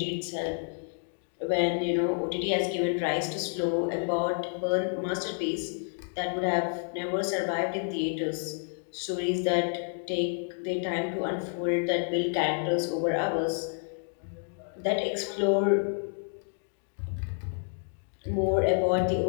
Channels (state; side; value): silent; right; digital silence